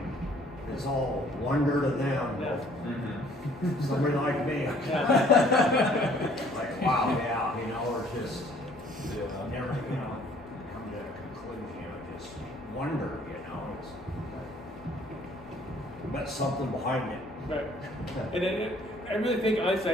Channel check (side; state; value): both; normal; correlation 0.58